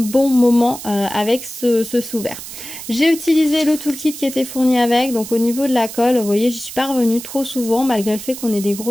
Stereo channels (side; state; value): right; noise; hiss, 11 dB below the sound